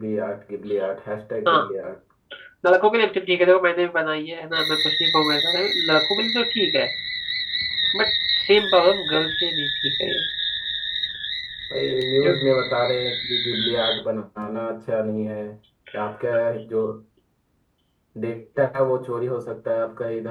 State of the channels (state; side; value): identical; both; correlation 1.00